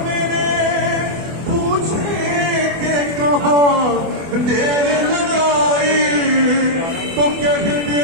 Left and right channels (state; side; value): late; left; 24 ms